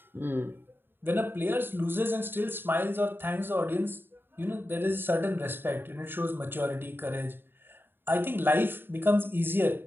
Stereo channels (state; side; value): late; left; 0.10 ms